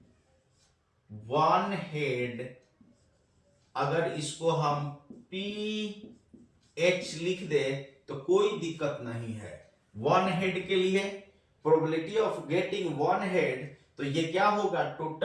1 head, अगर इसको हम PH लिख दे तो कोई दिक्कत नहीं है। 1 हेड के लिए प्रोबेबिलिटी ऑफ गेटिंग 1 हेड, तो ये क्या होगा?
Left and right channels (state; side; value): identical; both; correlation 1.00